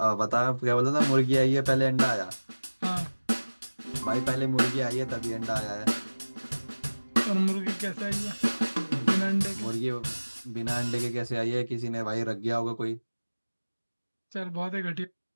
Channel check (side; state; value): both; inverted; correlation -1.00